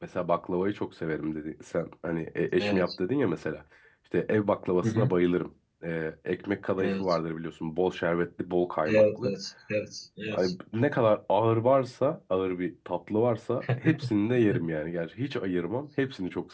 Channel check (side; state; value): both; identical; correlation 1.00